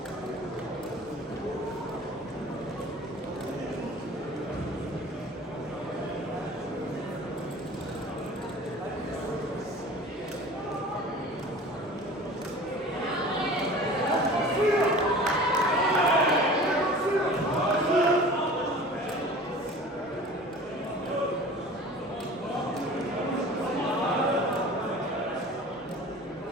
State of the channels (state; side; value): normal; both; correlation 0.41